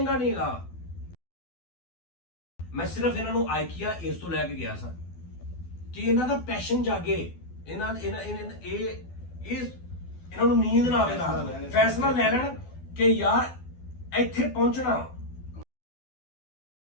ਨਹੀਂ ਹੈਗਾ। ਮੈਂ ਸਿਰਫ ਇਹਨਾਂ ਨੂੰ ਆਈਕੀਆ ਇਸ ਤੋਂ ਲੈ ਕੇ ਗਿਆ ਸਾਂ ਕਿ ਇਹਨਾਂ ਦਾ ਪੈਸ਼ਨ ਜਾਗੇ, ਇਹਨਾਂ ਨੂੰ ਨੀਂਦ ਨਾ ਆਵੇ ਰਾਤ ਨੂੰ, ਫੈਸਲਾ ਲੈ ਲੈਣ ਕਿ ਯਾਰ ਇੱਥੇ ਪਹੁੰਚਣਾ।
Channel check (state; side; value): late; right; 12 ms